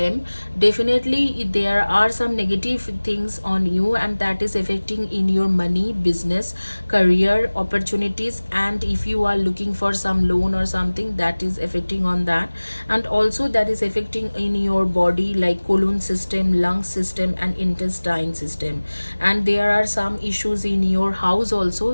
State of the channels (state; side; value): inverted; both; correlation -1.00